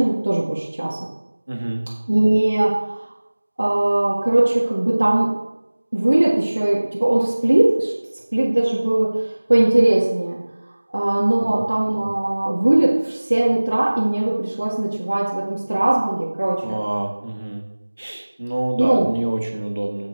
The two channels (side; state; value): both; inverted; correlation -1.00